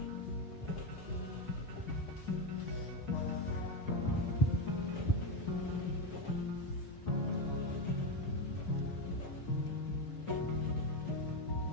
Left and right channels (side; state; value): right; late; 5.9 ms